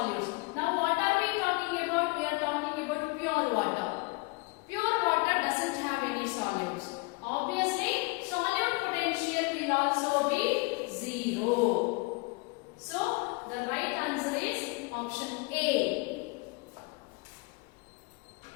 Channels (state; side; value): quieter; right; 27.7 dB